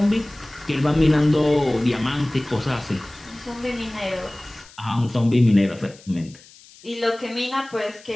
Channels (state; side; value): noise; left; hiss, 23 dB below the sound